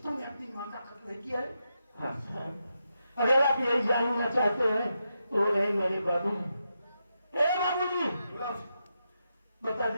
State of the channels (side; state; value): both; inverted; correlation -0.85